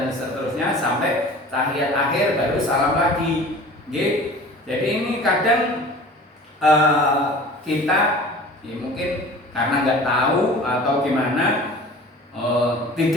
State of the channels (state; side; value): normal; both; correlation 0.42